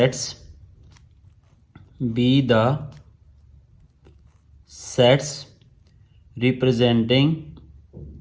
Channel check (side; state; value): both; identical; correlation 1.00